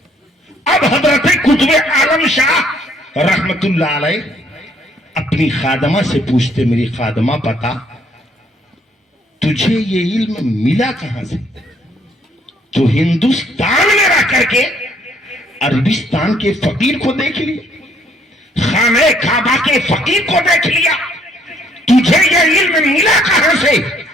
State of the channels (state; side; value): normal; both; correlation 0.65